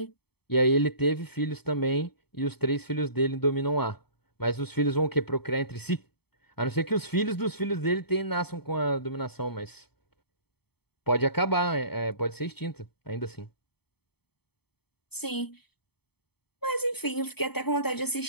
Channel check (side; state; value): right; late; 0.97 ms